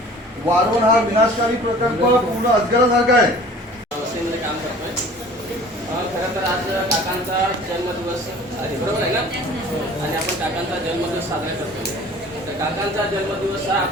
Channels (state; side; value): normal; both; correlation 0.46